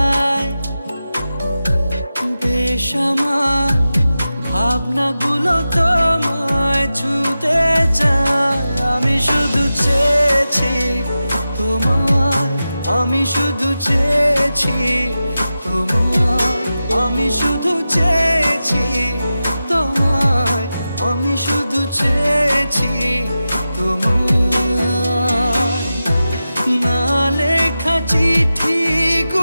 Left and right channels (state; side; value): inverted; both; correlation -0.93